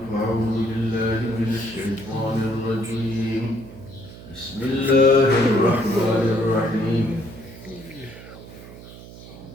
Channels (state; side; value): noise; right; hum, 16 dB below the sound